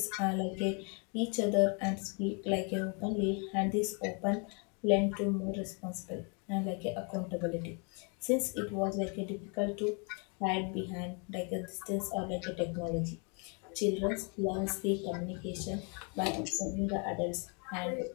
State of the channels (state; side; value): quieter; right; 36.1 dB